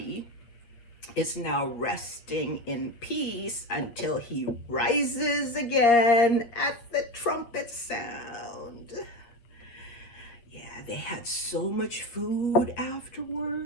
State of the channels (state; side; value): late; right; 8.3 ms